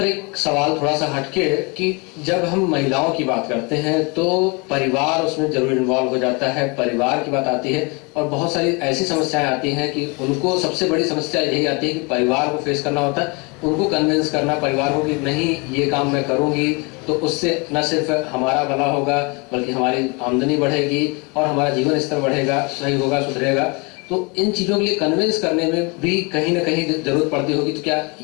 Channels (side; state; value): right; quieter; 29.8 dB